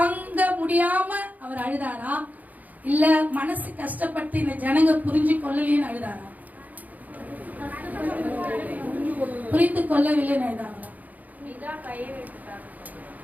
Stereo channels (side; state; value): left; late; 0.079 ms